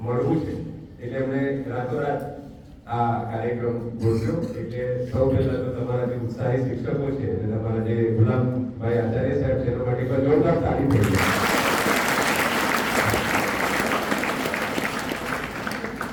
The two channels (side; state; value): both; identical; correlation 1.00